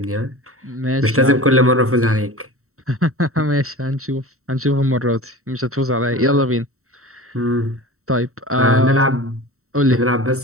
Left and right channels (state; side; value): late; left; 0.63 ms